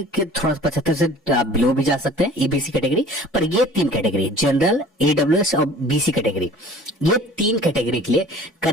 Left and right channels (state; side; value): normal; both; correlation 0.47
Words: के थोड़ा 75 से बिलो भी जा सकते हैं एबीसी कैटेगरी, पर ये 3 कैटेगरी जनरल, ईडब्ल्यूएस और बीसी कैटेगरी, ये 3 कैटेगरी के लिए